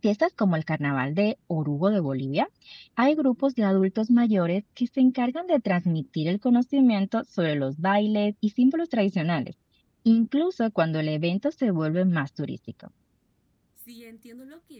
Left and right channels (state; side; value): identical; both; correlation 1.00